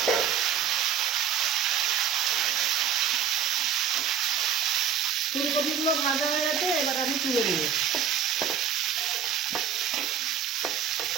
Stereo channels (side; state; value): left; quieter; 8.0 dB